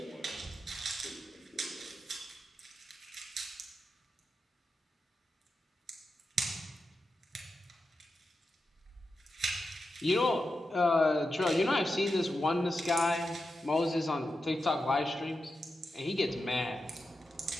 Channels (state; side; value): normal; both; correlation 0.89